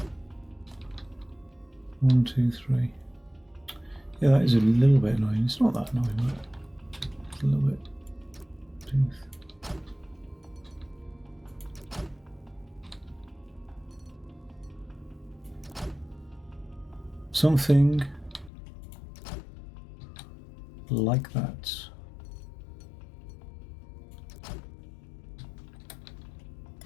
One, two, three. Yeah, that is a little bit annoying. It's not that annoying, but it's a little bit. Tooth. Something like that.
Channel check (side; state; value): right; drops out; at 18.5 s